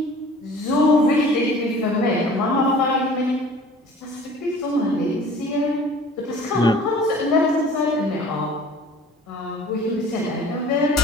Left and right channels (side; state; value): both; normal; correlation 0.47